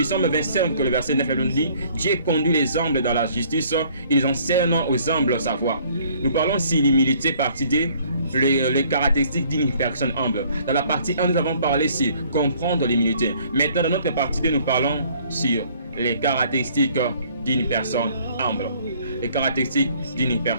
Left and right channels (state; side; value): inverted; both; correlation -0.59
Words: Psaume 25, le verset 9, nous dit: Dieu conduit les humbles dans la justice, ils enseignent aux humbles sa voie. Nous parlons ici l'humilité, partie D, les caractéristiques d'une personne humble. Dans la partie 1, nous avons parlé sur comprendre l'humilité. Maintenant, dans notre partie 2, nous parlons sur les caractéristiques d'une personne humble. Les caractéristiques d'une